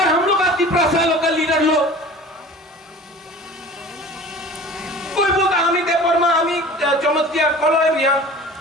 हम लोग तिपरासा लोकल लीडर लोग कोई बोलता हमें देवबर्मा, हमें चमत्कार कलोय रियांग।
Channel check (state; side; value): normal; both; correlation 0.41